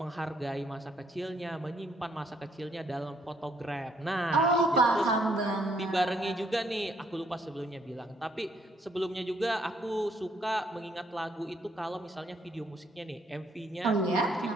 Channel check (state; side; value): normal; both; correlation 0.69